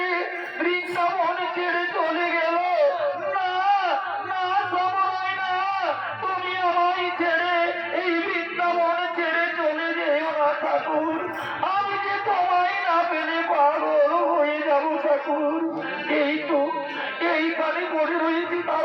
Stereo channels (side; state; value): both; identical; correlation 1.00